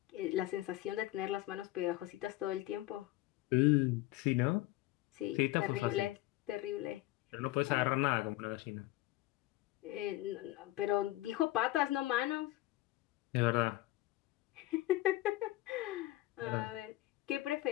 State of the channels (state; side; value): quieter; right; 17.4 dB